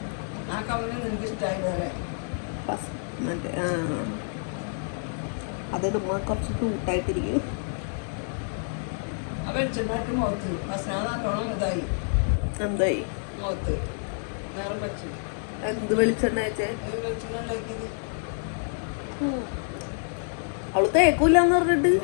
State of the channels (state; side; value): silent; right; digital silence